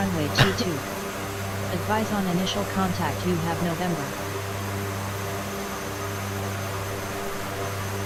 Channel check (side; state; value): both; identical; correlation 1.00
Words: 22. Advise on initial contact you have November.